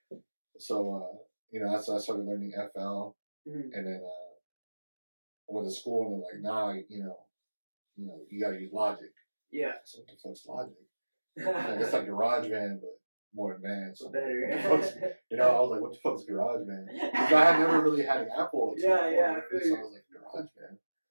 So that's when I started learning FL, and then I went to school and they're like, nah, you gotta use Logic. Yeah. I said, what the fuck's Logic? Like, it's like GarageBand, but more advanced. So better. I was like, what the fuck's GarageBand? Because I had never really had an Apple. So I was like, GarageBand.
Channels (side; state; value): both; inverted; correlation -1.00